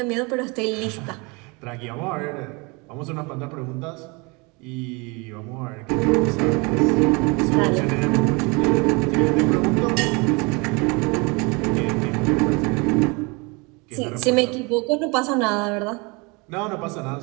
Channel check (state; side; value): quieter; left; 28.3 dB